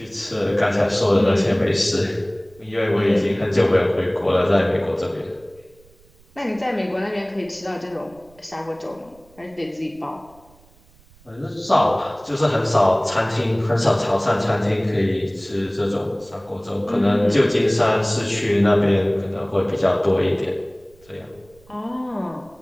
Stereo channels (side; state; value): right; noise; rumble, 29 dB below the sound